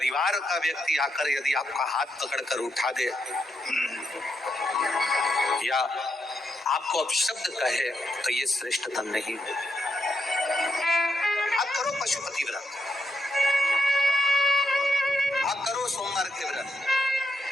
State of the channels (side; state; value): both; normal; correlation 0.82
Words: का व्यक्ति आकर यदि आपका हाथ पकड़कर उठा दे या आपको अपशब्द कहे, तो ये श्रेष्ठतम नहीं। आप करो पशुपति व्रत, आप करो सोमवार के व्रत,